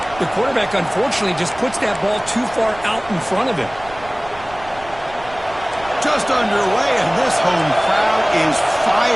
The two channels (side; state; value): right; noise; rumble, 19 dB below the sound